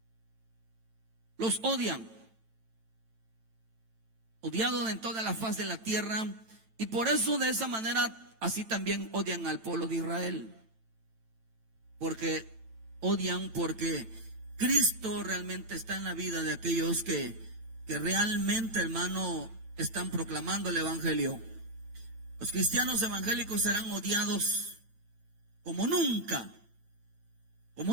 Los odian, odiados en toda la faz de la tierra, y por eso, de esa manera, así también odian al pueblo de Israel, porque Cristo realmente está en la vida de aquellos que realmente, hermano, están proclamando el evangelio. Los cristianos evangélicos serán odiados como nunca,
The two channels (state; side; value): late; left; 9.0 ms